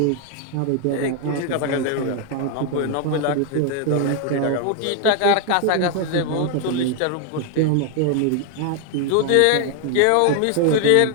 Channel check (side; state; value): both; different; correlation 0.01